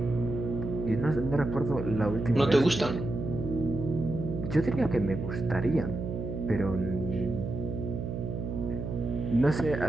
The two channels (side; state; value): right; noise; hum, 5 dB below the sound